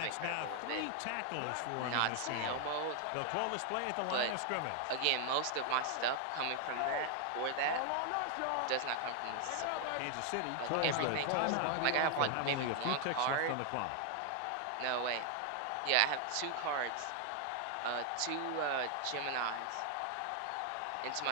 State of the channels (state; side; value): different; both; correlation 0.00